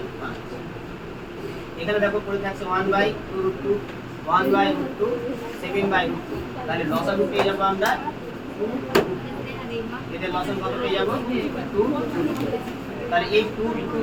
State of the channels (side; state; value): both; identical; correlation 1.00